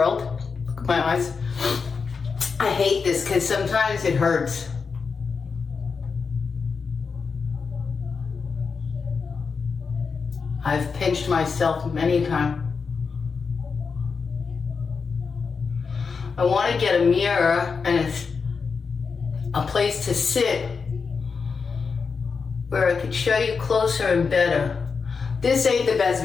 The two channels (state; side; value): quieter; right; 5.3 dB